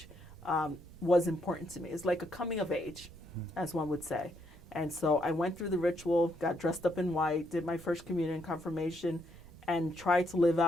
was important to me. It's like a coming of age, as one would say. And so I went through the ritual, got dressed up in white, did my first communion confirmation, and tried to live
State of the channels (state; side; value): normal; both; correlation 0.75